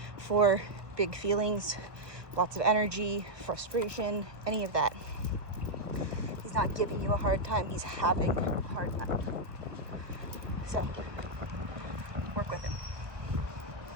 for big feelings, lots of energy, frustration, any of that. He's not giving you a hard time, he's having a hard time. So, work with him.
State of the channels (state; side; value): late; left; 1.3 ms